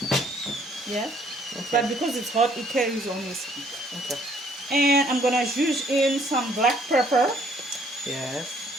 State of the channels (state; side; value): normal; both; correlation 0.63